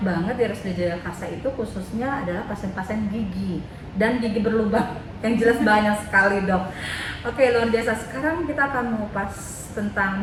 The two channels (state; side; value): identical; both; correlation 1.00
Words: di RSUD Jagakarsa itu khususnya adalah pasien-pasien gigi dan gigi berlubang yang jelas banyak sekali dok. Oke, luar biasa. Sekarang kita akan mengupas tentang